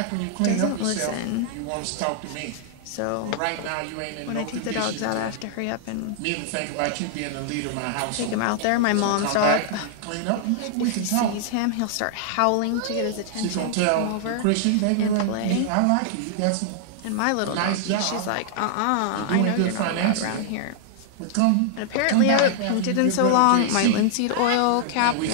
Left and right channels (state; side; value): different; both; correlation -0.01